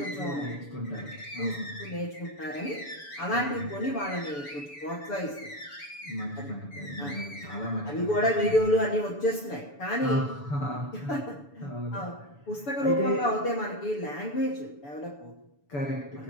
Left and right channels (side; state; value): right; late; 7.0 ms